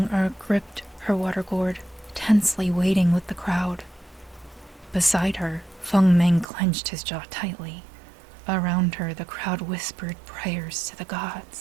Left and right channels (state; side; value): drops out; left; at 6.5 s